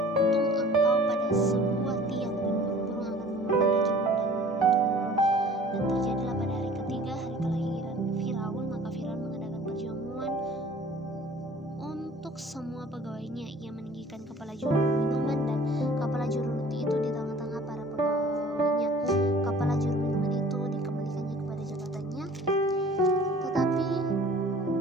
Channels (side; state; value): both; normal; correlation 0.48